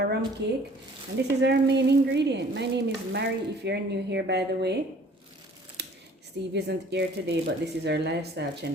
rum cake. And this is our main ingredient. My name is Mary, if you're new here, by the way. Steve isn't here today, but this is our lifestyle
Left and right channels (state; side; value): normal; both; correlation 0.53